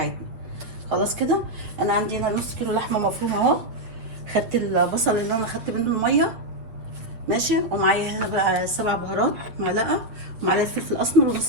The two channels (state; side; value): late; left; 8.4 ms